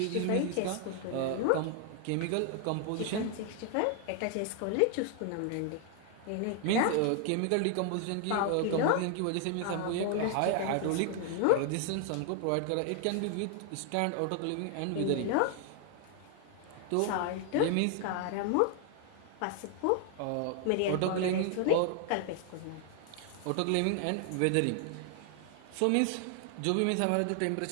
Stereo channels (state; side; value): different; both; correlation 0.00